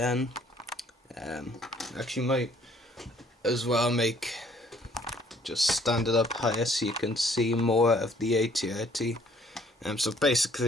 Actually might as well just stand it up higher so you can see more of the AT-AT. So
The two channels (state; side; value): normal; both; correlation 0.61